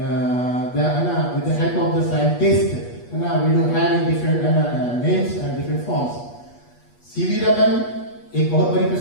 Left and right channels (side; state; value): right; late; 8.3 ms